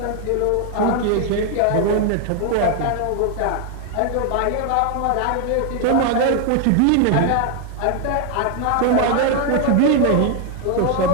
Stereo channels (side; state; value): both; different; correlation 0.00